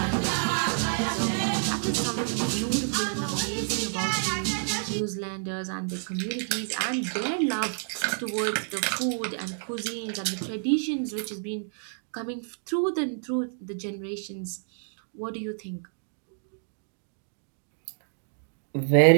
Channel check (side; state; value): left; silent; digital silence